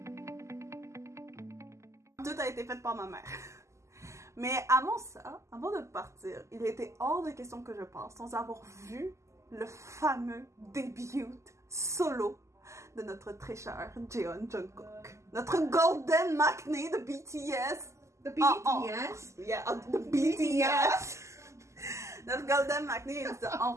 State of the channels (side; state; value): left; late; 0.14 ms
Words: Tout a été fait par ma mère. Mais avant ça, avant de partir, il était hors de question que je parte sans avoir vu le fameux début solo de notre très cher Jeon Jungkook. Notre Golden Maknae de BTS. The BTS? Yeah, the BTS. Notre Golden Maknae est